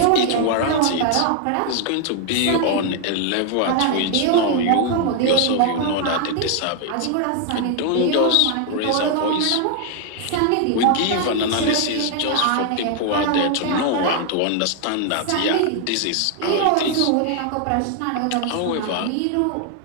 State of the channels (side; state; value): both; different; correlation 0.00